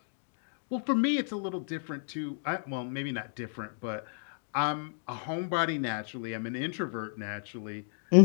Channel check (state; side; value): silent; right; digital silence